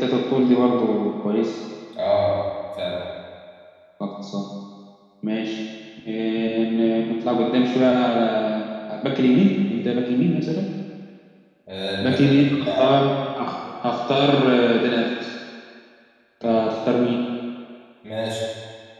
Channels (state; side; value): identical; both; correlation 1.00